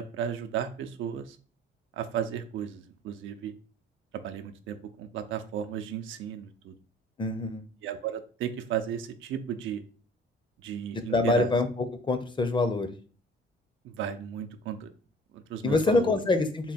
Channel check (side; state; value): both; normal; correlation 0.49